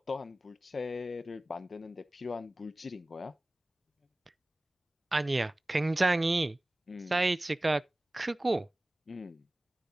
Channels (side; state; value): both; normal; correlation 0.98